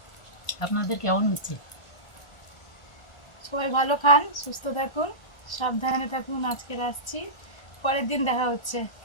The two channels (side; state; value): right; late; 1.4 ms